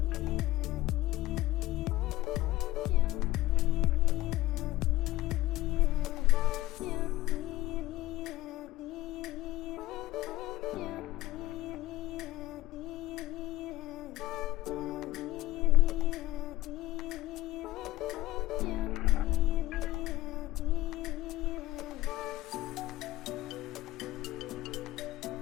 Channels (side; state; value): right; quieter; 16.6 dB